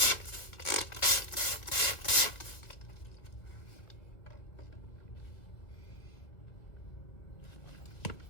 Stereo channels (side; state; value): right; late; 1.7 ms